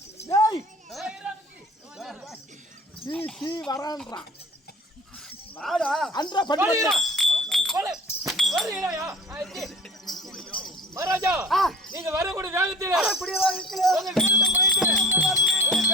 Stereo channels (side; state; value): both; normal; correlation 0.43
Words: வரான்றான் மகாராஜா நீங்க வரக்கூடிய வேகத்தில்